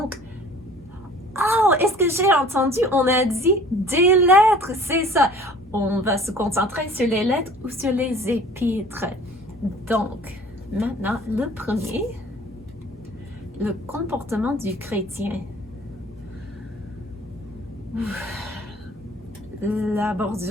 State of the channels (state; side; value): normal; both; correlation 0.49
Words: oh, est-ce que j'ai entendu? On a dit des lettres, c'est ça. On va se concentrer sur les lettres ou sur les épîtres. Donc, maintenant, le premier, le comportement du chrétien. La